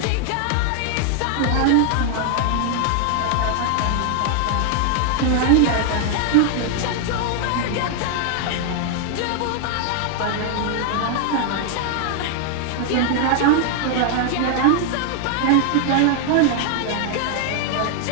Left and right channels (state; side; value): different; both; correlation 0.00